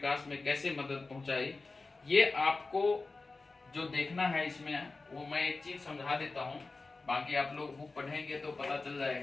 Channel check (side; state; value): right; quieter; 3.7 dB